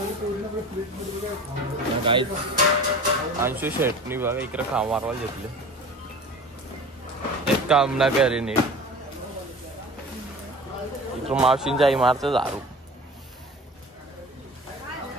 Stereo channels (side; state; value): both; normal; correlation 0.39